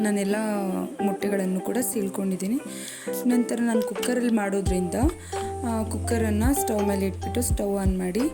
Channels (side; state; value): both; identical; correlation 1.00